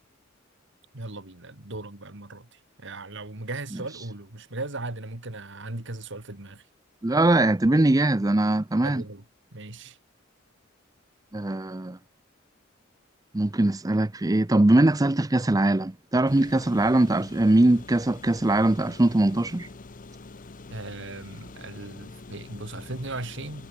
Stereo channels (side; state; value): both; normal; correlation 0.83